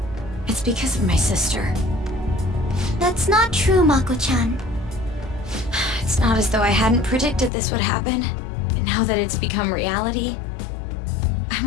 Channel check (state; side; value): drops out; right; at 7.5 s